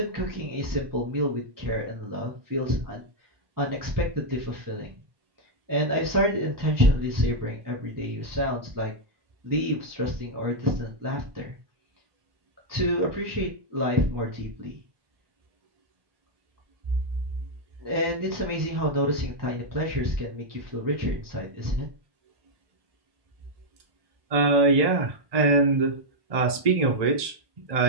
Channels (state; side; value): late; left; 1.1 ms